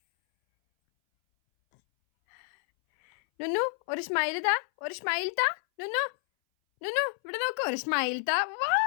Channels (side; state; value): right; silent; 58 dB below the other